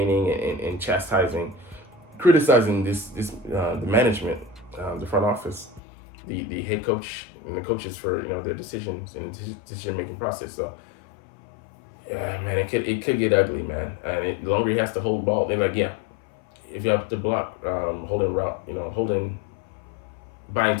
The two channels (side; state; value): right; drops out; at 5.8 s